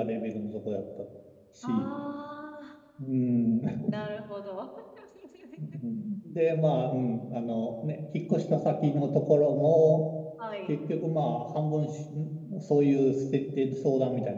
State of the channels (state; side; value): identical; both; correlation 1.00